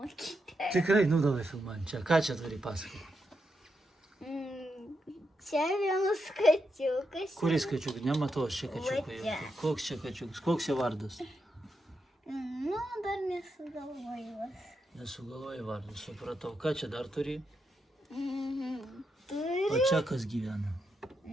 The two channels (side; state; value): both; normal; correlation 0.84